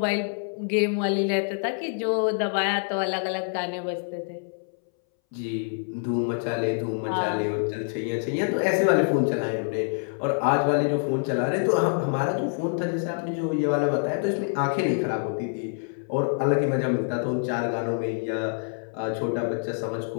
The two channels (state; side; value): silent; right; 61 dB below the other